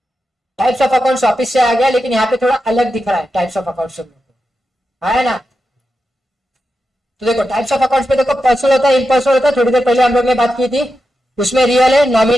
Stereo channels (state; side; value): normal; both; correlation 0.88